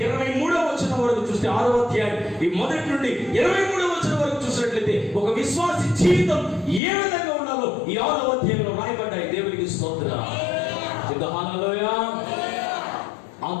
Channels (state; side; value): drops out; right; at 6.8 s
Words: వచనం వరకు చూస్తే 6వ అధ్యాయం ఈ మొదటి నుండి 23వ వచనం వరకు చూసినట్లయితే ఒక విశ్వాసి జీవితం ఏ విధంగా ఉండాలో ఈ 6వ అధ్యాయంలో రాయబడ్డాయి. దేవునికి స్తోత్రం. చెప్పండి హల్లెలూయా.